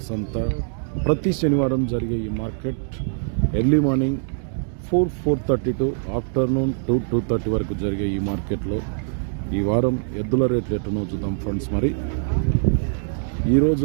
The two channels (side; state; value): left; silent; digital silence